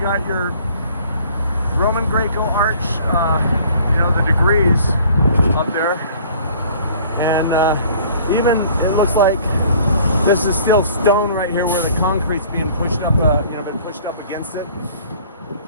Roman Greco arch, the degrees up there, and even it looks like this is still stone right here where the concrete's being pushed up, been pushed up against it.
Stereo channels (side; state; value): both; inverted; correlation -0.53